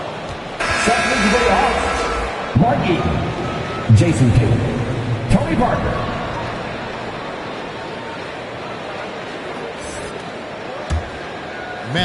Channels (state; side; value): identical; both; correlation 1.00